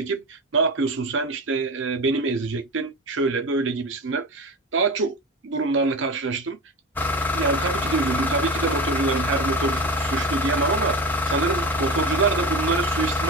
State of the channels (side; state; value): both; normal; correlation 0.27